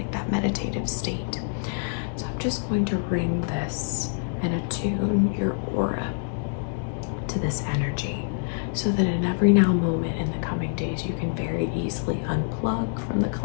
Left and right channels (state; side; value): silent; right; 61 dB below the other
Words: that meditative state. So I'm just going to ring this and attune your aura to this energy, so that in every now moment in the coming days, you can very easily unplug from the